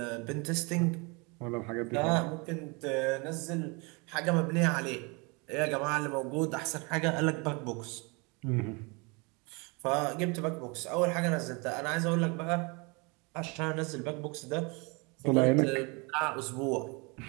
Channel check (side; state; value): left; quieter; 29.8 dB